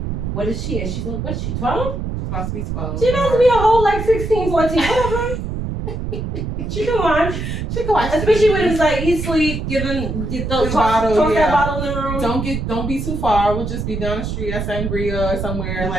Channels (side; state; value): right; noise; rumble, 4 dB below the sound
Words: what is she? And she's like, what is she, 12? She's about to be 12. She's about to be a whole, like, 16, 14, whatever. She can watch. She can watch. Especially when it's like, eat, sleep, toss that bottle in the room. Don't be too far. We'll just be down the street at Sangria or somewhere,